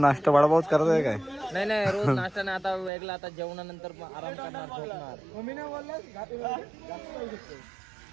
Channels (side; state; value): left; drops out; at 2.9 s